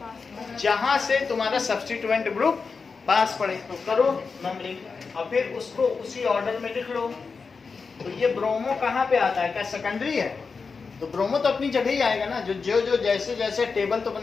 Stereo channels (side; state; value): right; quieter; 4.9 dB